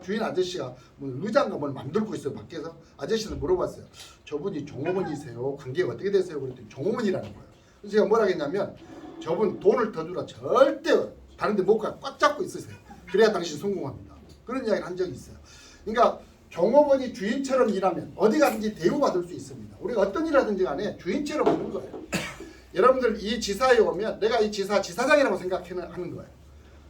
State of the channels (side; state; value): both; identical; correlation 1.00